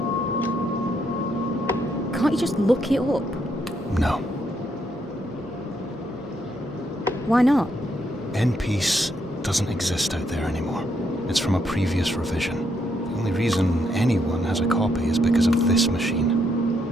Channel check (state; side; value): normal; both; correlation 0.76